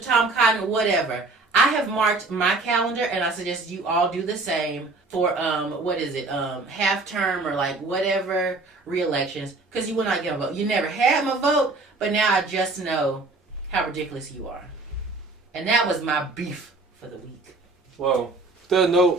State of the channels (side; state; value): left; quieter; 3.4 dB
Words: Tom Cotton, whatever. I have marked my calendar, and I suggest you all do the same for, half term or like whatever re-elections, because you will not get a vote. You never had my vote, but now I just know how ridiculous you are. And that was my beef for the week. Well, with that